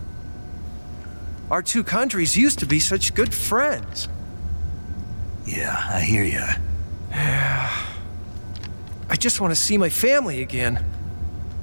Our two countries used to be such good friends. Yeah, I hear ya. I just want to see my family again.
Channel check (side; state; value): both; inverted; correlation -1.00